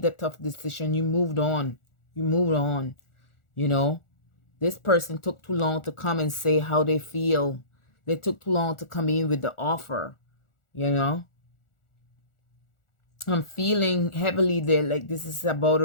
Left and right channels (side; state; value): right; late; 1.4 ms